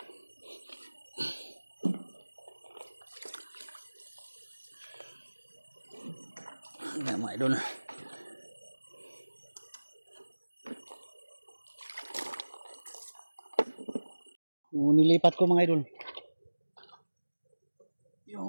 Ayan mga idol. Nilipat ko mga idol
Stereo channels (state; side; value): inverted; both; correlation -1.00